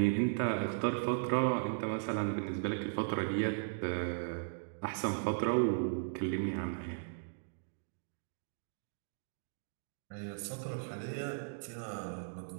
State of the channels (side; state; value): left; silent; digital silence